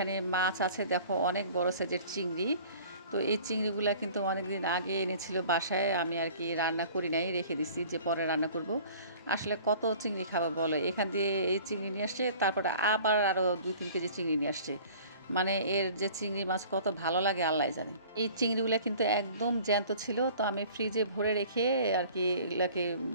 মাছ আছে, দেখো অনেক বড় সাইজের চিংড়ি। তো এই চিংড়িগুলো কিন্তু অনেক দিন আগে এনেছিল বাসায়, আমি আর কি রান্না করি নাই, রেখে দিছি যে পরে রান্না করব। আসলে কত চিংড়ি খাবো বলো, এখান দিয়ে এই চিংড়ি নিয়ে আসছে, তারপরে আবার আরও 2-3 কেজি চিংড়ি নিয়ে আসছে। মানে এর যে চিংড়ি মাছ কত ভালো লাগে আল্লাহ জানে। এই চিংড়িগুলো কিন্তু একদম জ্যান্ত ছিল, তো আমি ফ্রিজে ভরে রেখে আর কি এগুলাকে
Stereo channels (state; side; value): inverted; both; correlation -0.48